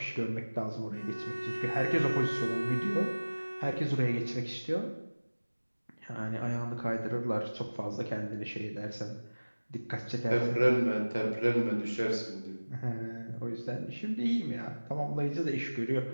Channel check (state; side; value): inverted; both; correlation -1.00